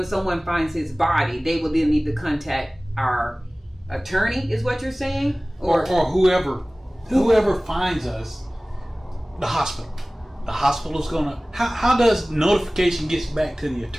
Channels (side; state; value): both; normal; correlation 0.98